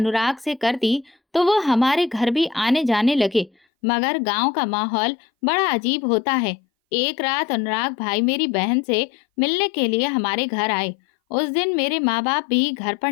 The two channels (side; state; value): right; drops out; at 3.5 s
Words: से कर दी तो वो हमारे घर भी आने जाने लगे। मगर गांव का माहौल बड़ा अजीब होता है। एक रात अनुराग भाई मेरी बहन से मिलने के लिए हमारे घर आए उस दिन मेरे माँ बाप भी घर पर